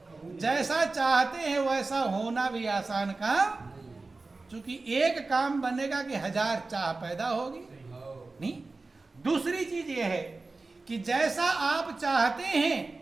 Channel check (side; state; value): left; quieter; 3.6 dB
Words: जैसा चाहते हैं वैसा होना भी आसान काम, क्योंकि एक काम बनेगा कि 1000 चाह पैदा होगी नहीं। दूसरी चीज यह है कि जैसा आप चाहते हैं